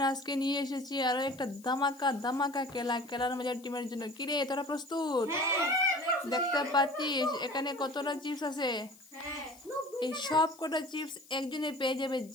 আজকে নিয়ে এসেছি আরো একটা ধামাকা ধামাকা খেলার মজার টিমের জন্য। কিরে তোরা প্রস্তুত? দেখতে পাচ্ছিস এখানে কতটা চিপস আছে। এই সব কটা চিপস একজনে পেয়ে যাবে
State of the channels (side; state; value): left; noise; hiss, 24 dB below the sound